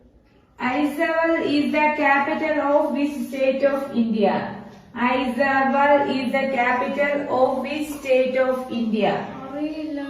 Aizawl is the capital of which state of India? Aizawl is the capital of which state of India? അറിയില്ല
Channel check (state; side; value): identical; both; correlation 1.00